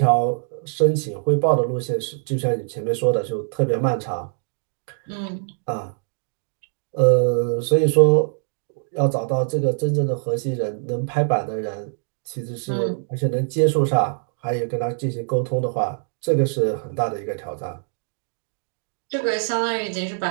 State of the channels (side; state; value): left; silent; digital silence